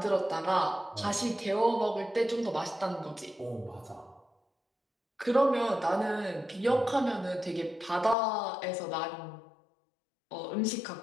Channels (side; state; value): right; drops out; at 8.2 s